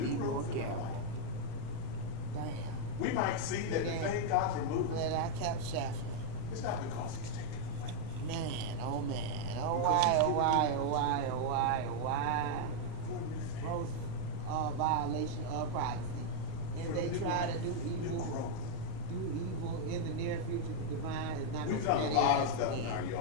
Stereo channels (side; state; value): both; different; correlation 0.00